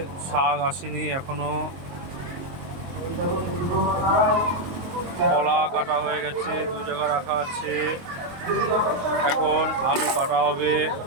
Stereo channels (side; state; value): left; late; 23 ms